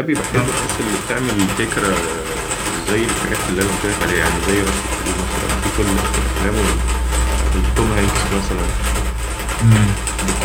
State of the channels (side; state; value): both; identical; correlation 1.00